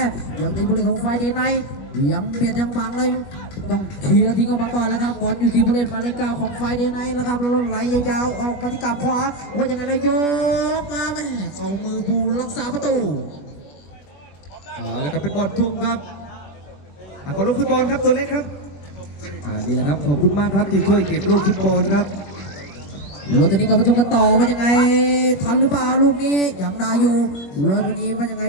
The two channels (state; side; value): late; right; 21 ms